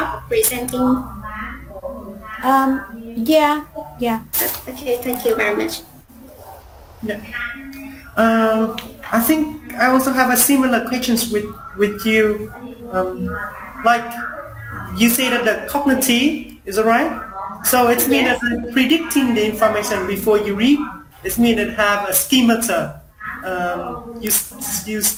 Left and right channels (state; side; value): identical; both; correlation 1.00